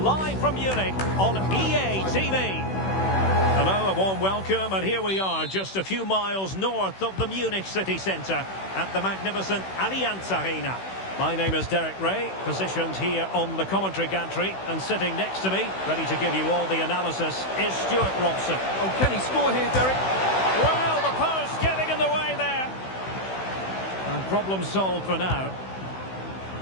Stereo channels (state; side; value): late; right; 16 ms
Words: from Munich on EA TV. Hello, a warm welcome, and here we are, just a few miles north of the Munich city centre at the magnificent Allianz Arena. My name is Derek Ray, positioned here on the commentary gantry, and sitting next to me, ready to give you all the analysis, is Stuart Robson. Oh, can he score here, Derek? Well, the post getting in the way there. And problem solved for now.